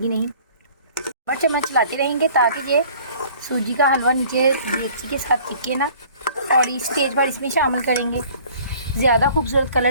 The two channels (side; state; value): both; inverted; correlation -0.51